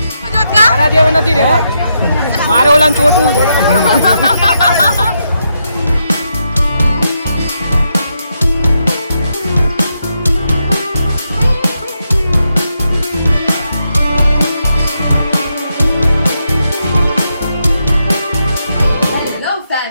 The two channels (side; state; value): both; inverted; correlation -0.82